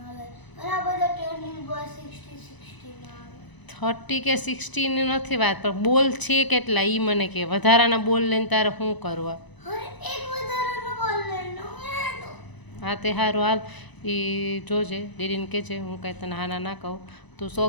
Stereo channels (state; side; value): late; right; 1.0 ms